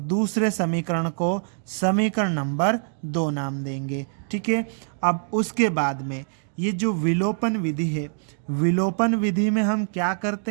दूसरे समीकरण को समीकरण नंबर 2 नाम देंगे। ठीक है, अब उसके बाद में ये जो विलोपन विधि है, विलोपन विधि में हम क्या करते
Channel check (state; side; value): silent; left; digital silence